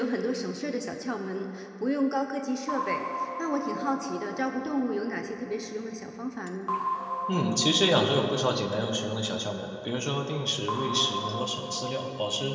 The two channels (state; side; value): identical; both; correlation 1.00